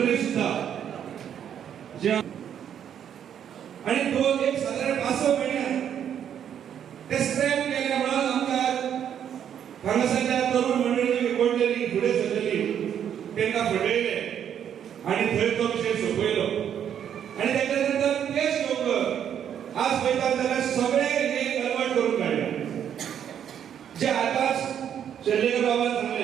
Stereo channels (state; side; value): quieter; left; 9.1 dB